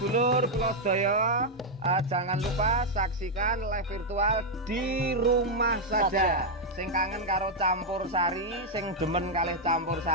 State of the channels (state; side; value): normal; both; correlation -0.01